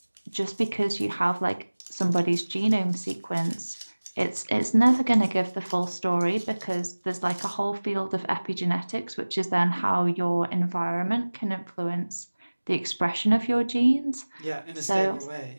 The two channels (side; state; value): both; inverted; correlation -1.00